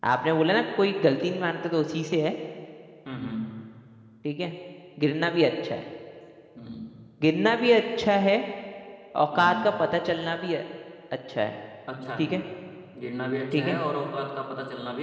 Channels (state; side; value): identical; both; correlation 1.00